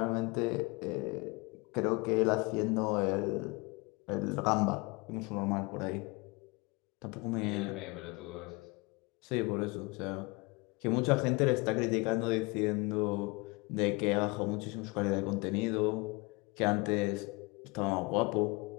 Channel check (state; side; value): quieter; right; 26.7 dB